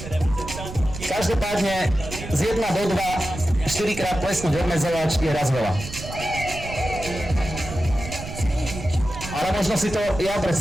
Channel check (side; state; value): right; noise; rumble, 10 dB below the sound